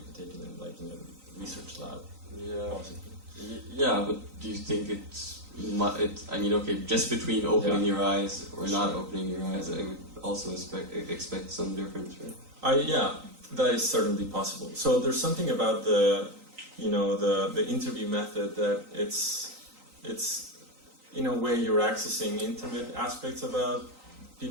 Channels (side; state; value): left; late; 3.9 ms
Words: can take it in, like, in a research lab. Yeah. Possibly. Yeah, but do you think I mean, okay, just between opening your eyes or not opening your eyes, I would also expect some difference, right? Yeah, that is certainly possible. So there's something about the interview method that it's in a way you're accessing intimate aspects about